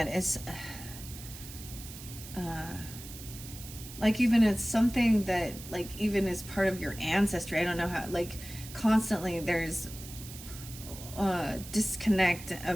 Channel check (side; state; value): right; noise; hiss, 14 dB below the sound